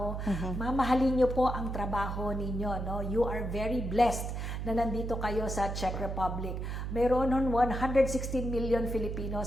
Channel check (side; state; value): right; noise; hum, 4 dB below the sound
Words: Mamahalin nyo po ang trabaho ninyo. No? You are very blessed na nandito kayo sa Czech Republic. Mayroon nun 116 million